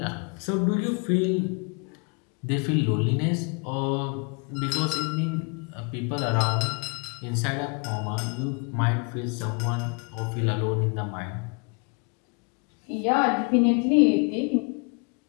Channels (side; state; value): right; quieter; 34.6 dB